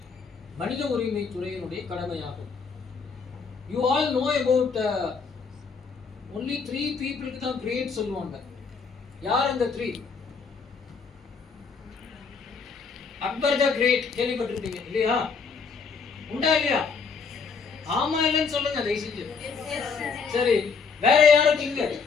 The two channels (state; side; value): quieter; right; 5.3 dB